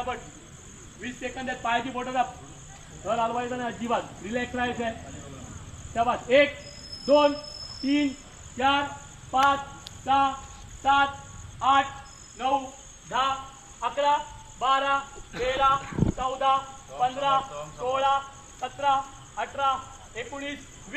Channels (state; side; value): identical; both; correlation 1.00